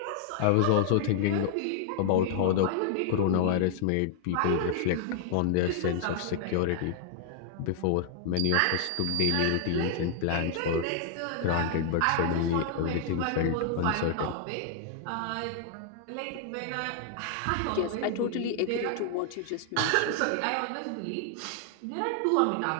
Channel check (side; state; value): both; different; correlation -0.01